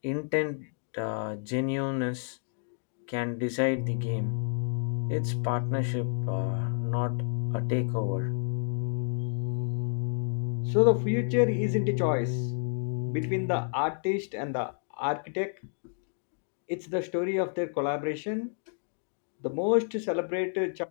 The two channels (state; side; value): silent; right; digital silence